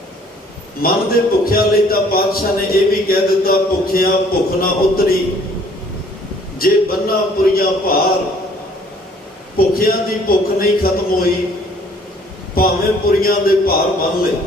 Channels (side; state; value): both; normal; correlation 0.58